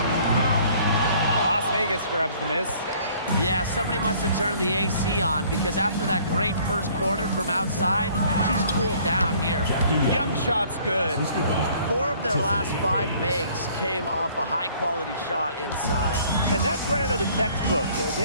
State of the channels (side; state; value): both; inverted; correlation -0.57